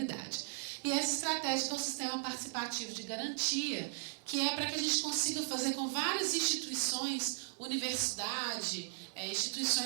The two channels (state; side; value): silent; left; 53 dB below the other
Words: E essa estratégia é o sistema participativo de garantia, que é para que a gente consiga fazer com várias instituições, universidade,